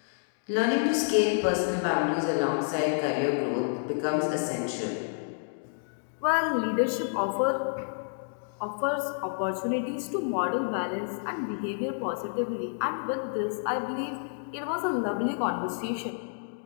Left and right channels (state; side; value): silent; right; digital silence